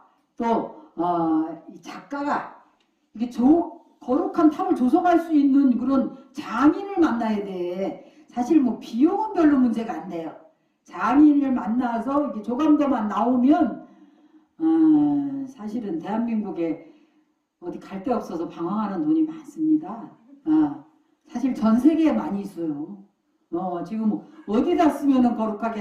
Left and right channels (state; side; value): identical; both; correlation 1.00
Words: 또 작가가 이게 거룩한 탑을 조성할 수 있는 그런 장인을 만나야 돼. 사실 뭐 비용은 별로 문제가 안 돼요. 장인을 만나서 이게 조감도만 나오면 사실은 대한민국에 어디 갈 데 없어서 방황하는 돈이 많습니다. 사실 전 세계에 많이 있어요. 지금 어디다 쓰면은